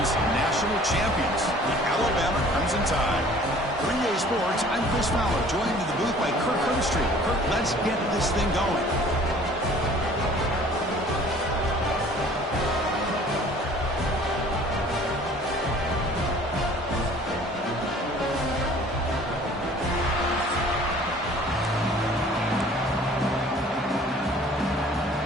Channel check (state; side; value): normal; both; correlation 0.51